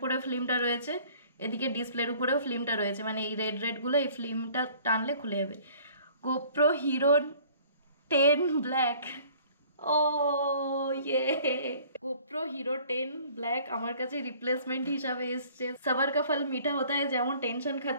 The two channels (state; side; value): inverted; both; correlation -0.53